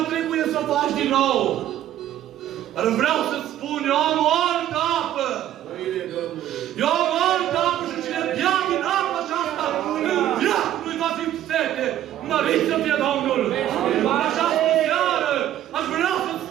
trebuie să o faci din nou. Dar vreau să-ți spun, eu am o altă apă. Eu am o altă apă și cine bea din apa aceasta, în viață nu-i va fi sete. Mărit să fie Domnul! În această seară aș vrea să-ți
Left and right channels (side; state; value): left; quieter; 12.2 dB